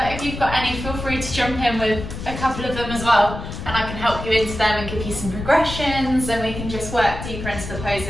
if you've got any, feel free to jump in with a couple of them as well, and I can help you into them and give you some progressions, and we can just work deeper into the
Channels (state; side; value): noise; left; rumble, 8 dB below the sound